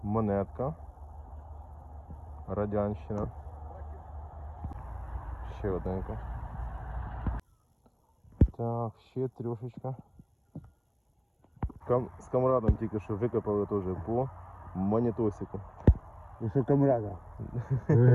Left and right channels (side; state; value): both; identical; correlation 1.00